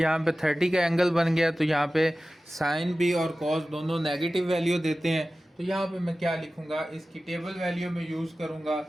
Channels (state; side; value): normal; both; correlation 0.96